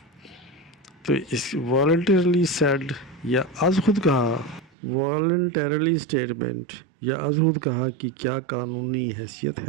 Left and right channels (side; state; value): left; drops out; at 4.7 s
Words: تو اس والنٹیرلی سیڈ یا از خود کہا، والنٹیرلی اسٹیٹمنٹ یا از خود کہا کی کیا قانونی حیثیت